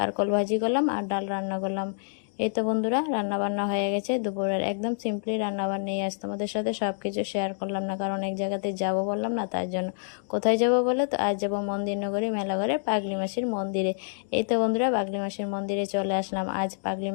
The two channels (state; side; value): silent; right; digital silence